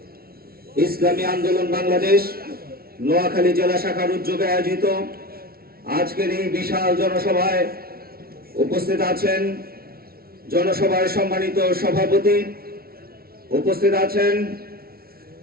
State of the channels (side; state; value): left; late; 0.44 ms